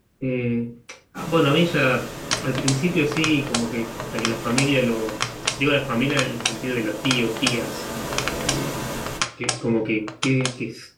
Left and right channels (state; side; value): identical; both; correlation 1.00